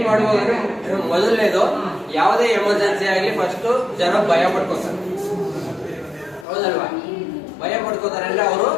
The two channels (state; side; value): drops out; right; at 6.5 s